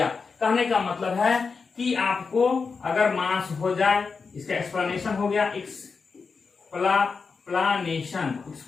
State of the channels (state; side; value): quieter; right; 5.0 dB